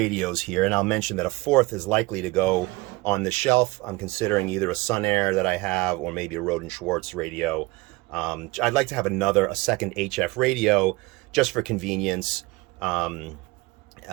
here, and I'll mention that a 4th is likely to go on the shelf. I'm considering either a Sun Air that I have or maybe a Roden Schwartz radio. I'd like to have a second HF radio just for convenience, you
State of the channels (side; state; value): left; quieter; 22.3 dB